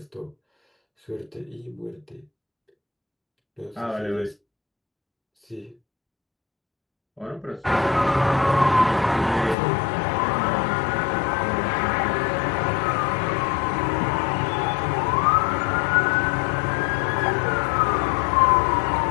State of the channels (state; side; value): drops out; right; at 9.6 s